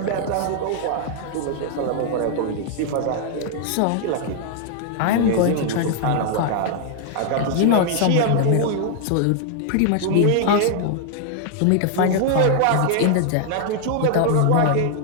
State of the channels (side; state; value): both; different; correlation 0.00